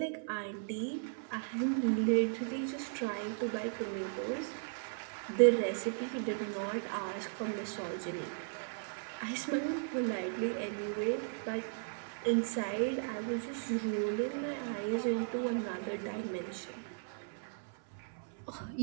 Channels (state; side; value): silent; left; 53 dB below the other